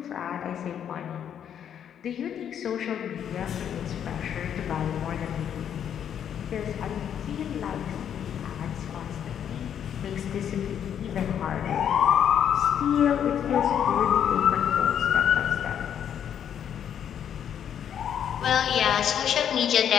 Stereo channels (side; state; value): right; quieter; 9.0 dB